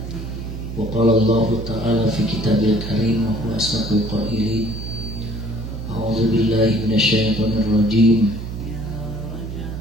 Wa qala Allah ta'ala fi kitabil karim wa huwa asdaqul qailin. A'udzu billahi minasy syaithanir rajim.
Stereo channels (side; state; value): right; noise; hum, 7 dB below the sound